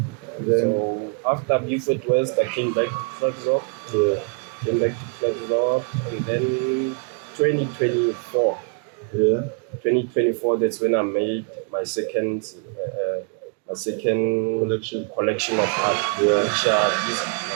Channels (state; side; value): quieter; left; 38.0 dB